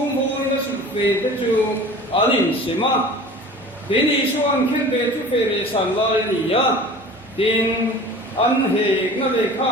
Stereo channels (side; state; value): both; normal; correlation 0.41